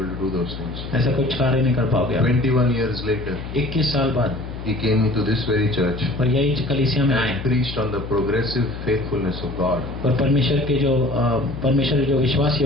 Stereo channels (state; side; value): noise; left; hum, 9 dB below the sound